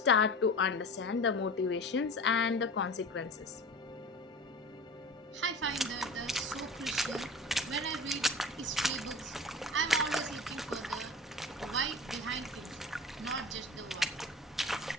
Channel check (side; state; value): both; normal; correlation 0.35